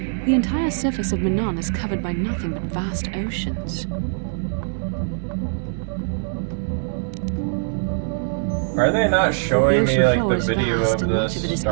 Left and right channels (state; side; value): silent; left; digital silence